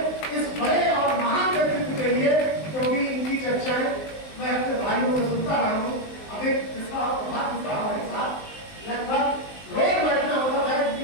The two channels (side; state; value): right; late; 19 ms